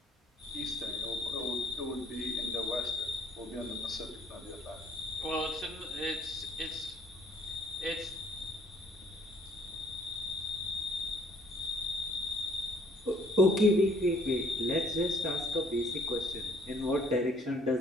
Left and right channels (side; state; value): both; normal; correlation 0.61